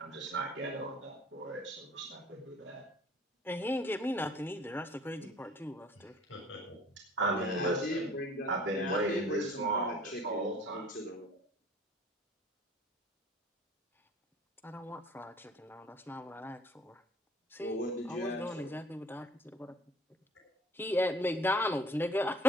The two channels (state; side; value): normal; both; correlation 0.50